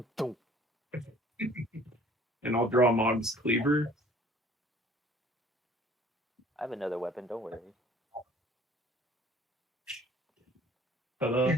dunk. And I'll draw Mog's cleaver. I have another weapon, don't worry. Ta-da.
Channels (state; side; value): normal; both; correlation 0.53